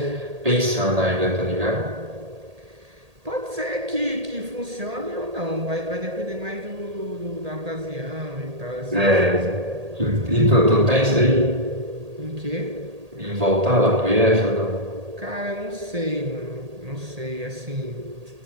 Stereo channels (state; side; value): late; left; 1.8 ms